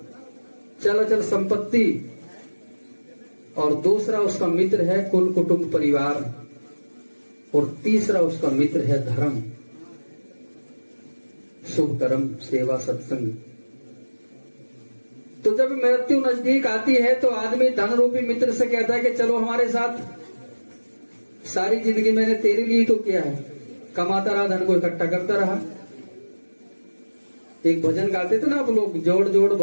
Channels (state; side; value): inverted; both; correlation -1.00